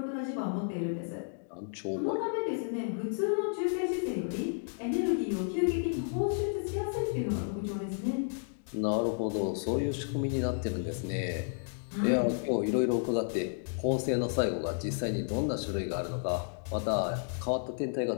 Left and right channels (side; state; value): right; silent; digital silence